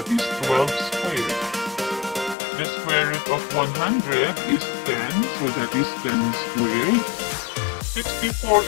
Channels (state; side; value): drops out; right; at 2.4 s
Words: is 12 squared. The square root of 100 is 10, so that is 10 squared.